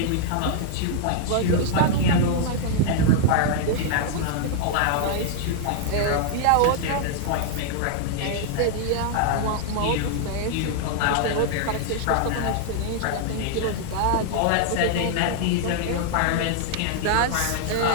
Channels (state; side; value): different; both; correlation -0.01